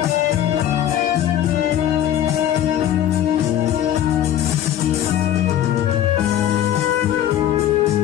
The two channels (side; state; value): right; quieter; 11.3 dB